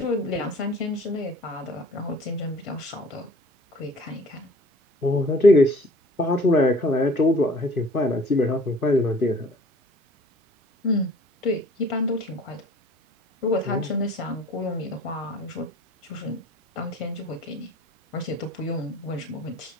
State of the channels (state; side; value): normal; both; correlation 0.50